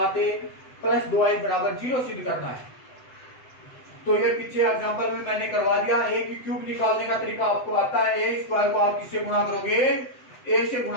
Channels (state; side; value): late; right; 7.9 ms